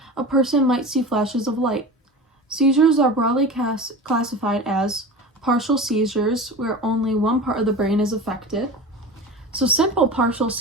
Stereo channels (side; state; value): both; normal; correlation 0.32